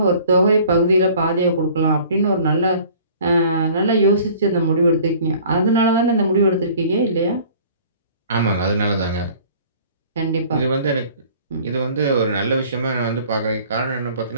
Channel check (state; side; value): inverted; both; correlation -0.50